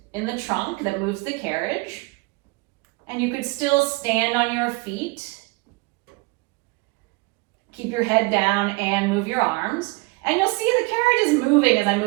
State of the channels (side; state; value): left; quieter; 25.8 dB